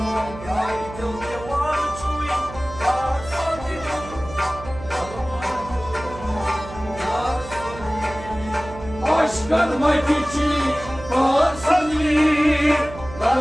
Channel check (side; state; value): right; noise; hum, 14 dB below the sound